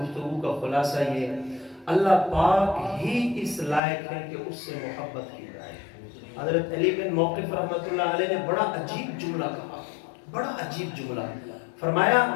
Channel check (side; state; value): right; drops out; at 3.8 s